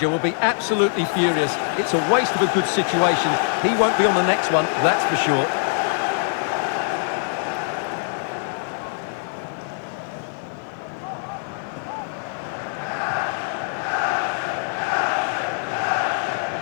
will be absolutely furious. It's a waste of a good situation. He won't be on the next one, that's for sure.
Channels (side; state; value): right; silent; digital silence